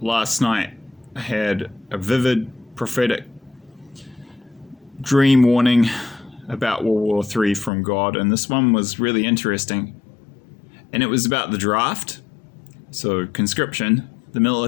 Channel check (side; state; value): right; drops out; at 7.7 s